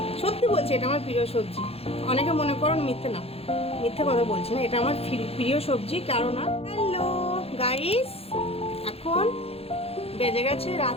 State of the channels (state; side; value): late; right; 0.29 ms